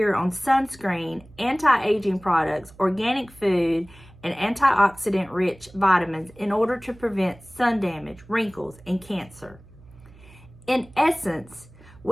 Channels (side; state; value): right; noise; hum, 23 dB below the sound